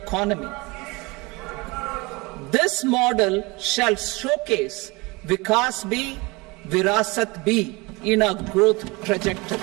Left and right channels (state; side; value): quieter; left; 24.9 dB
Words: This model shall showcase Vikas B, Virasat B in our growth trajectory.